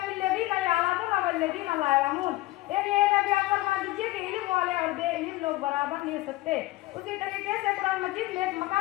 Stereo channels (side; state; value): right; quieter; 18.3 dB